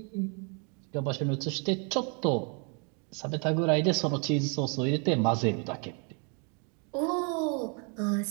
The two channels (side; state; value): left; quieter; 37.1 dB